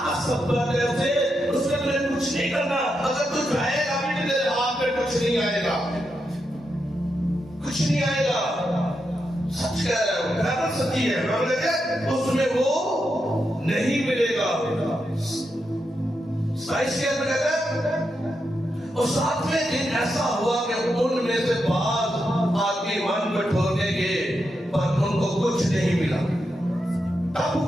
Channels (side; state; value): both; normal; correlation 0.85